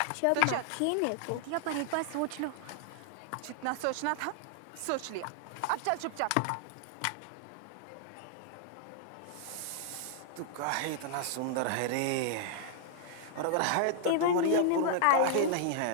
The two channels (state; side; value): different; both; correlation -0.01